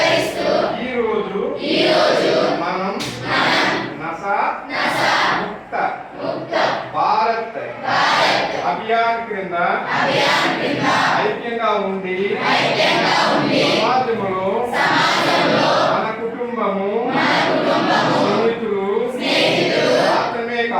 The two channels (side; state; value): both; identical; correlation 1.00